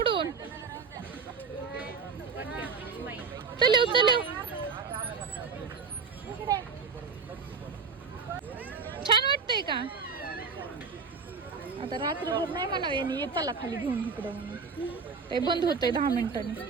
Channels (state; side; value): quieter; left; 5.2 dB